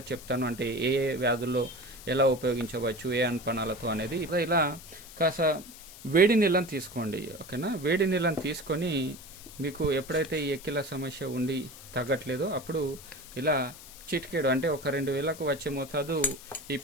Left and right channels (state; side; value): noise; left; hiss, 17 dB below the sound